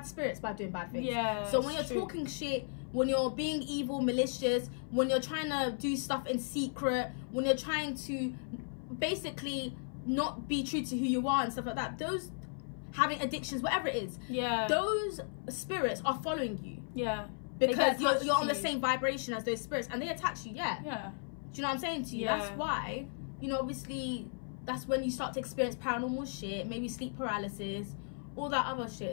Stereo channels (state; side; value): silent; right; 54 dB below the other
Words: spirits by doing bad things. Yeah. So when you're talking shit, when you're being evil, malicious, when you're trying to do stuff in secret, when you're trying to basically not be true to who you are and stuff like that, those having addictions, whatever it is, those spirits are following you. Yeah. Because you're on the same vibration as those spirits, and they attach you. Yeah. Do you know what I'm saying to you? Yeah. That's why, you know, obviously, that's when you start to experience paranormal shit, maybe sleep paralysis, all that other shit